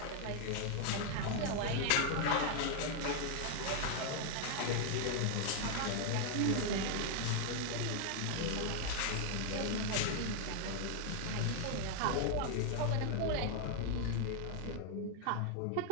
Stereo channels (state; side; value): different; both; correlation 0.00